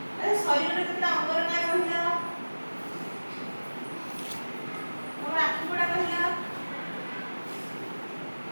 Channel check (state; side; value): inverted; both; correlation -1.00